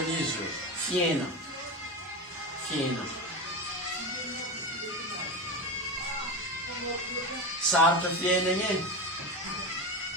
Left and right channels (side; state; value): both; normal; correlation 0.21